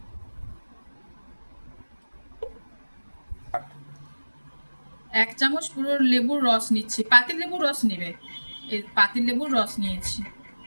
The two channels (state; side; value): inverted; both; correlation -1.00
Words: 1 চামচ পুরো লেবুর রস নিচ্ছি, পাতিল লেবুর রস নেবে, এই পাতিল লেবুর রস নিয়েছি।